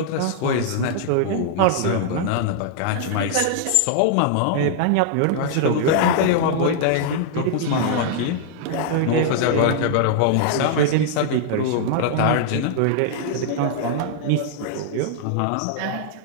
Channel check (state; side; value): different; both; correlation -0.01